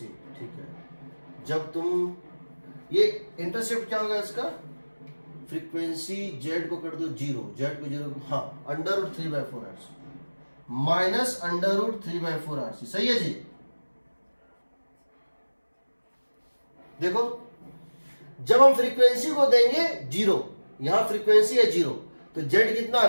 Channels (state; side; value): inverted; both; correlation -1.00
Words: ठीक है, जब तुम ये इंटरसेप्ट क्या होगा इसका, फ्रीक्वेंसी z को कर दो 0, z को 0, हाँ, under root 3/4 RC minus under root 3/4 RC। सही है जी। देखो, जब हम फ्रीक्वेंसी को देंगे 0, यहां फ्रीक्वेंसी है 0, तो z कितना आ